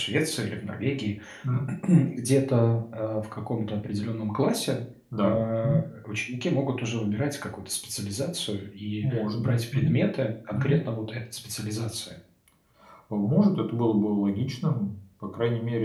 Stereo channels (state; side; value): identical; both; correlation 1.00